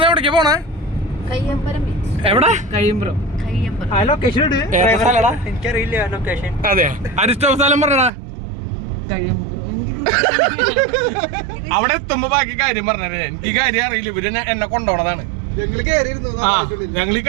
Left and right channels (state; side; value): drops out; left; at 8.1 s